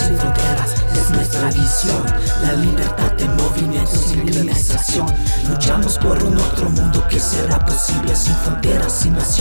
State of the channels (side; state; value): both; inverted; correlation -1.00